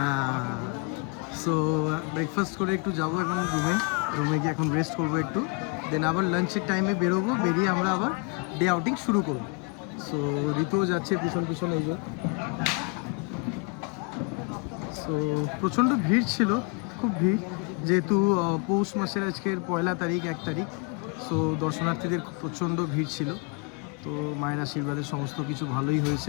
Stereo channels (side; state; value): right; quieter; 30.4 dB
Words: সো ব্রেকফাস্ট করে একটু যাবো এখন রুমে গিয়ে এখন রেস্ট করবো একটু, দেন আবার লাঞ্চের টাইমে বেরোবো, বেরিয়ে আমরা আবার ডে আউটিং শুরু করবো। সো ঋতুও যাচ্ছে পিছন এই যে। সো প্রচণ্ড ভিড় ছিল, খুব ভিড়, যেহেতু পৌষ মাসের আজকের 1 তারিখ 1 তারিখ। সো দর্শনার্থীদের প্রচণ্ড ভিড় ছিল। তো মায়ের আশীর্বাদে সমস্ত কিছু ভালোই